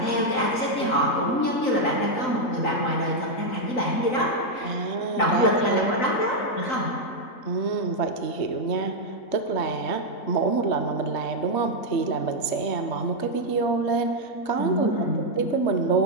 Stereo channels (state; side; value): late; right; 3.9 ms